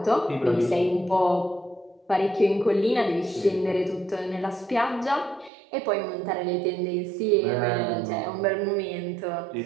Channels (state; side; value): drops out; left; at 5.5 s